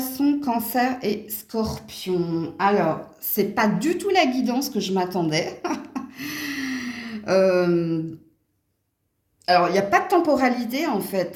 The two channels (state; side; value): identical; both; correlation 1.00